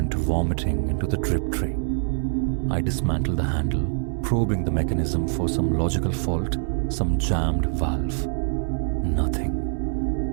vomiting into the drip tray. I dismantled the handle, probing the mechanism for some logical fault, some jammed valve. Nothing.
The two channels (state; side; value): silent; left; 62 dB below the other